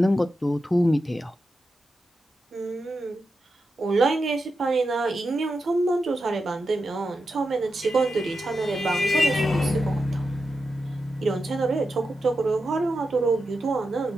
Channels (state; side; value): normal; both; correlation 0.89